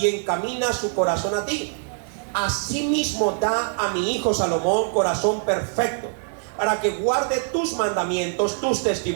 encamina su corazón a ti. Asimismo da a mi hijo Salomón corazón perfecto, para que guarde tus mandamientos, tus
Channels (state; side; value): silent; left; 58 dB below the other